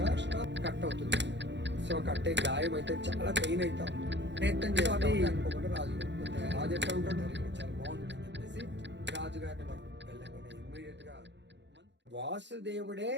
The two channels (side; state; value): left; late; 0.52 ms